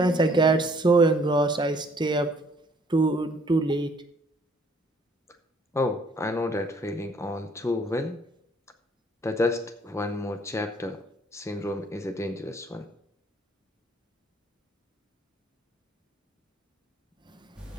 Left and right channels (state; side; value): normal; both; correlation 0.61